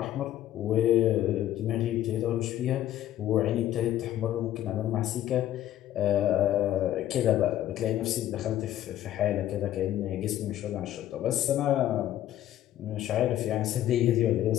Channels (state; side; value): quieter; right; 12.7 dB